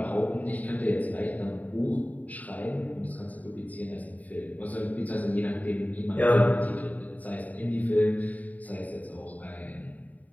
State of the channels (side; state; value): right; late; 0.073 ms